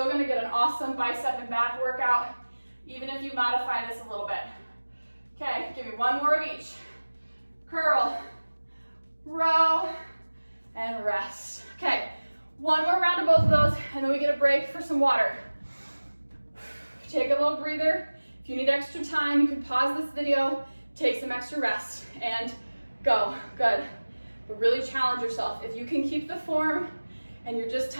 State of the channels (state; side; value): inverted; both; correlation -1.00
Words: gonna get an awesome bicep and back workout, even if you modify this a little bit. Okay, give me one more of each. Curl, row, and rest. Okay, one more round of both of those, and then we get a break for some water. Take a little breather. If you need extra time, you can pause this video, take some extra rest, and go. Good. But really challenge yourself. If you can keep the form and you're just